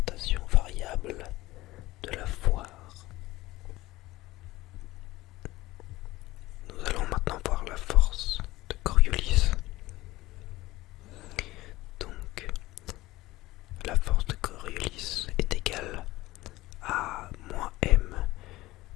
variable de la foire. Nous allons maintenant voir la force de Coriolis. Donc, la force de Coriolis est égale à -m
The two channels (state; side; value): quieter; right; 18.1 dB